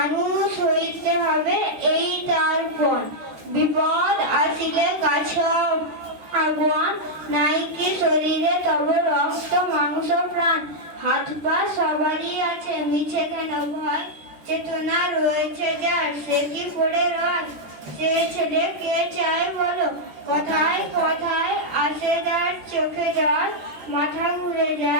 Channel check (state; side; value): late; left; 14 ms